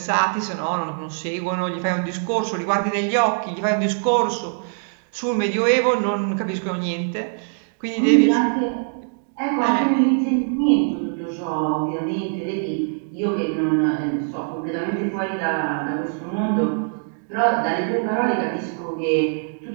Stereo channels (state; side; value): silent; left; digital silence